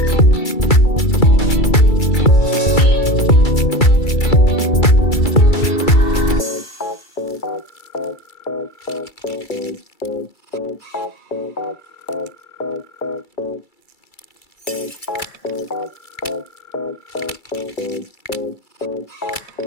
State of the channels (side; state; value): right; late; 2.3 ms